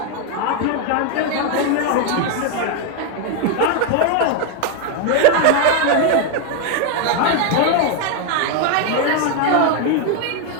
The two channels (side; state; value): both; different; correlation 0.01